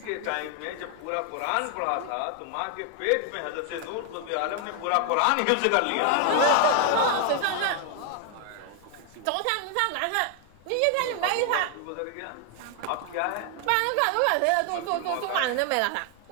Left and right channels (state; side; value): different; both; correlation 0.00